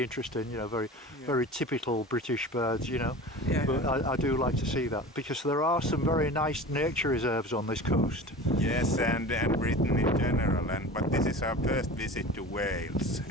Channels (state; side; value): normal; both; correlation 0.36